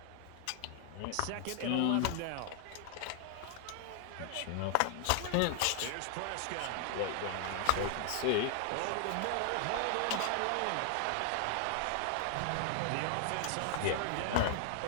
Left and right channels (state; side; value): different; both; correlation 0.00